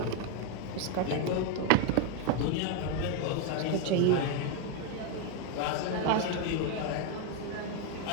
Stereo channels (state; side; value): different; both; correlation 0.01